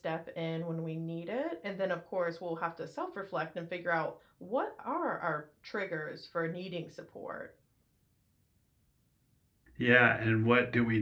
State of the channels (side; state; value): both; identical; correlation 1.00